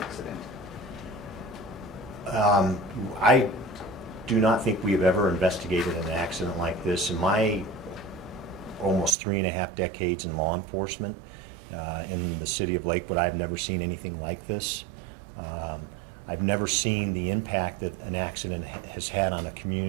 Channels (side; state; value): left; drops out; at 9.2 s